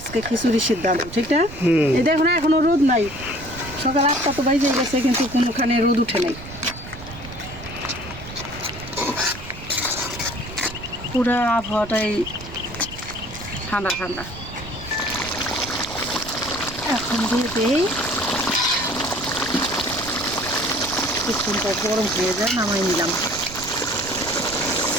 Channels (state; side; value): noise; right; rumble, 14 dB below the sound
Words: খিচুড়ির সিদ্ধান্ত, ঠিক না? এই দেখো না, এখনো রোদ নাই। সকাল 8টা তো বাজে গেছে, কিন্তু কোনোখানে রোদ উঠে নাই। পুরা আবহাওয়াটাই ঠান্ডা ঠান্ডা। এখন দিয়ে দেই, কিছুটা গরম হয়ে যায়, নামাই নিলাম।